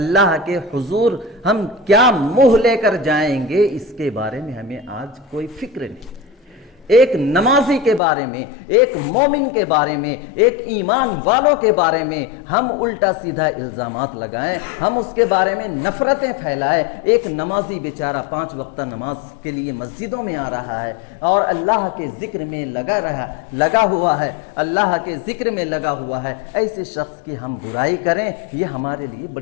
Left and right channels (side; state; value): right; drops out; at 8.0 s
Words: کے حضور ہم کیا منہ لے کر جائیں گے؟ اس کے بارے میں ہمیں آج کوئی فکر نہیں۔ ایک نمازی کے بارے میں، ایک مومن کے بارے میں، ایک ایمان والوں کے بارے میں ہم الٹا سیدھا الزامات لگائیں، ہم اس کے بارے میں نفرتیں پھیلائیں۔ ایک نمازی بیچارہ 5 وقتہ نماز کے لیے مسجدوں میں آ رہا ہے اور اللہ کے ذکر میں لگا ہوا ہے، اللہ کے ذکر میں لگا ہوا ہے، ایسے شخص کی ہم برائی کریں، یہ ہمارے لیے